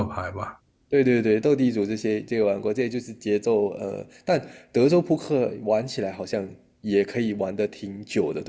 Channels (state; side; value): identical; both; correlation 1.00